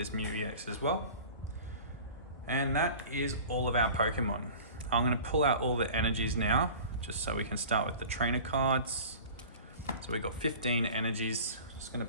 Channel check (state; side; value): inverted; both; correlation -0.41